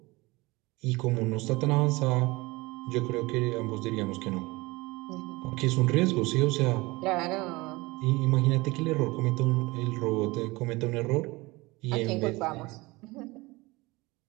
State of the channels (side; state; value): left; quieter; 22.6 dB